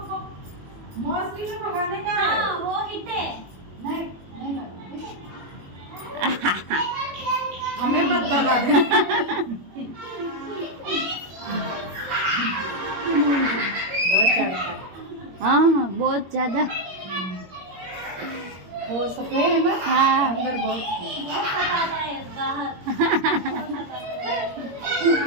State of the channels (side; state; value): left; late; 21 ms